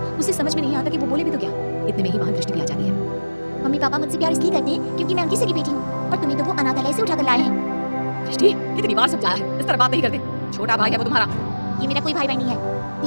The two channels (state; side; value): inverted; both; correlation -1.00